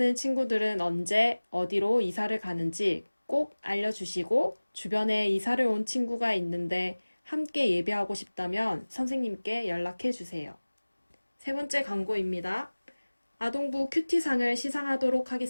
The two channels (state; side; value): inverted; both; correlation -1.00